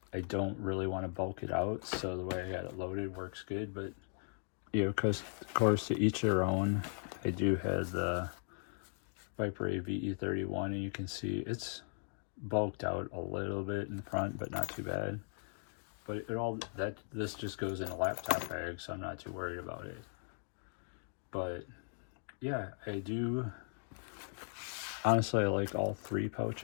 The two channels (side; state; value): right; silent; 52 dB below the other